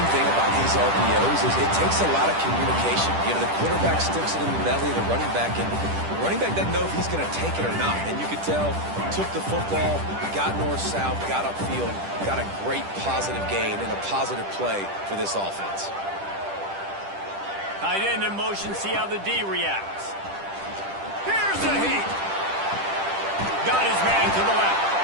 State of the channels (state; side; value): late; left; 10 ms